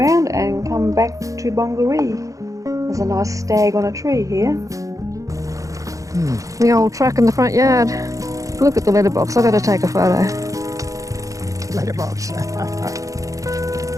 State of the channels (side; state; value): left; late; 0.16 ms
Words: and come back to Bongaree. There's a nice stag on a tree here. The old truck in the front yard. Look at the letterbox, I've got to take a photo. Letterbox.